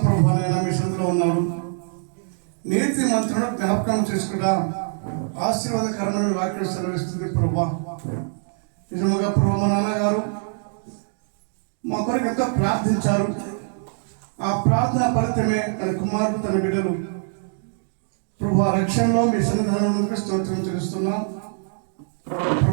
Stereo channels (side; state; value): left; silent; 63 dB below the other